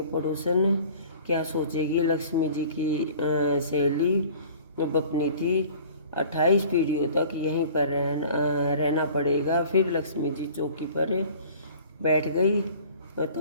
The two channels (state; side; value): inverted; both; correlation -0.47